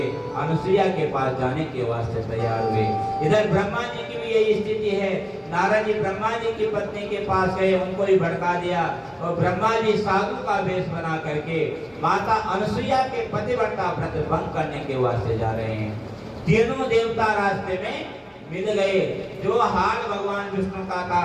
अनुसुईया के पास जाने के वास्ते तैयार हुए। इधर ब्रह्मा जी की भी यही स्थिति है। नारद जी ब्रह्मा जी की पत्नी के पास गए, उनको भी भड़का दिया और ब्रह्मा जी साधु का वेश बना करके माता अनुसुईया के पतिव्रता व्रत भंग करने के वास्ते जा रहे हैं। तीनों देवता रास्ते में मिल गए। जो हाल भगवान विष्णु का था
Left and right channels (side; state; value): both; identical; correlation 1.00